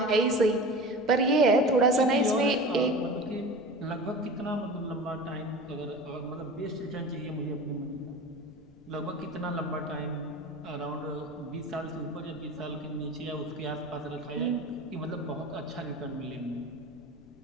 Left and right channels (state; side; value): noise; left; rumble, 25 dB below the sound